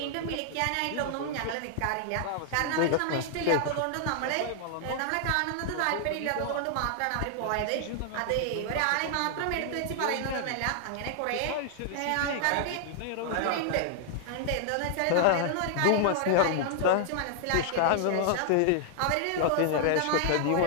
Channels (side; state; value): both; different; correlation -0.01